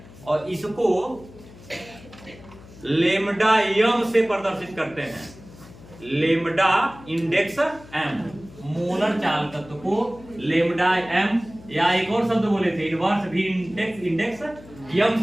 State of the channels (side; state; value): left; noise; hum, 20 dB below the sound